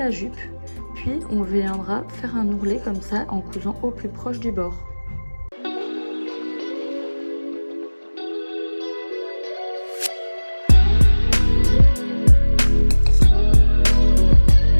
jupe. Puis on viendra faire un ourlet comme ça en cousant au plus proche du bord.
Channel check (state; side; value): inverted; both; correlation -1.00